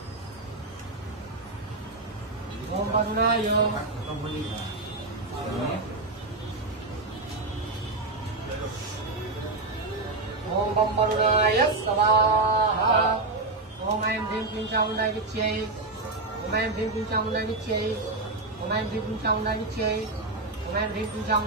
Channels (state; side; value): quieter; left; 3.2 dB